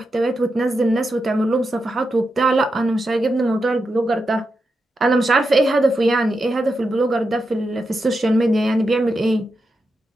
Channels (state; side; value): normal; both; correlation 0.87